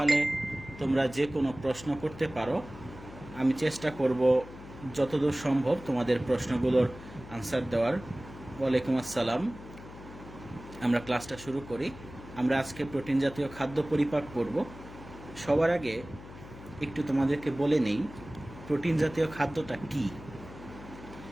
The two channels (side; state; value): left; noise; hum, 16 dB below the sound